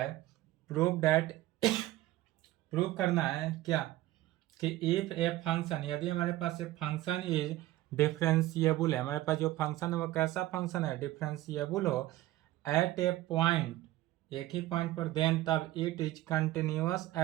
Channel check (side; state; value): left; quieter; 16.1 dB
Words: प्रूव दैट, प्रूव करना है क्या कि इफ ए फंक्शन, यदि हमारे पास एक फंक्शन इज डिफरेंशिएबल है, हमारे पास जो फंक्शन है वो कैसा फंक्शन है, डिफरेंशिएबल हो एट ए पॉइंट, एक ही पॉइंट पर, देन तब it is continuous